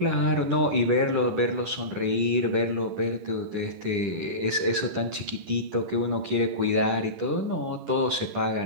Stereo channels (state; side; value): late; left; 10 ms